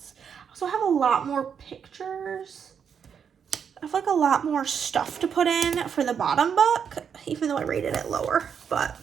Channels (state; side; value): quieter; left; 7.3 dB